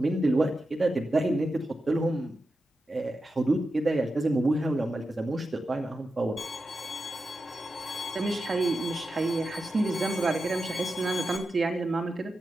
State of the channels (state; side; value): normal; both; correlation 0.90